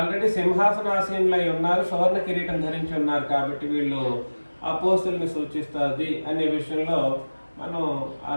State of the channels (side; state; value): both; inverted; correlation -1.00